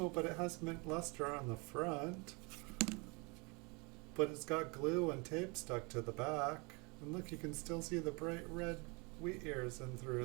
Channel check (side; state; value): left; quieter; 29.6 dB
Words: but it has mint luster on the front, but it's got glue and tape stuck to the back, and look, you can still see the bright red wheat ears in